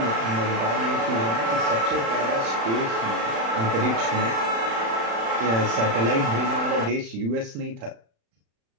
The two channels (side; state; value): left; late; 35 ms